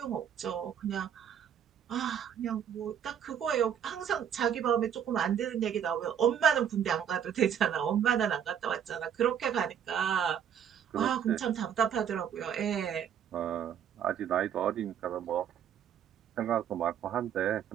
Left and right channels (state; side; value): quieter; left; 8.7 dB